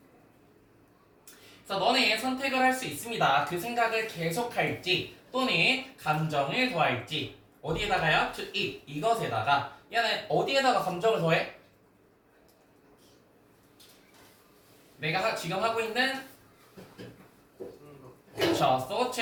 그래서 너네 선택을 할 수 있습니다. 그 생각을 계속할지 또는 감정을 더할지. 어디에다가요? to it, 이것에다가. 얘는 어디에다가 감정을 더해? 내가 지금 하고 있는 그렇죠,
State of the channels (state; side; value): identical; both; correlation 1.00